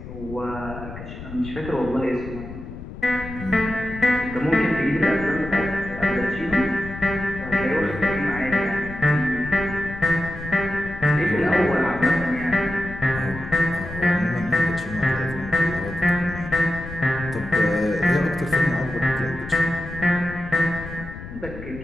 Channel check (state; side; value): noise; left; rumble, 12 dB below the sound